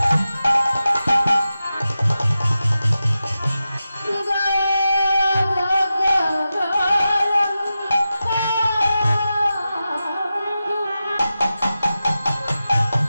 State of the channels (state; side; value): inverted; both; correlation -0.92